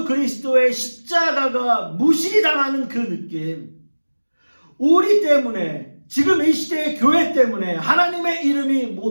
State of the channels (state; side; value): inverted; both; correlation -1.00